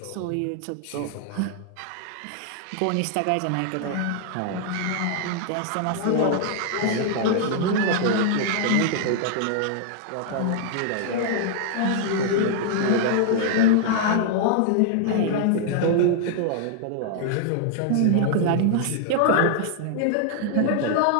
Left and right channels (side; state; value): both; different; correlation -0.01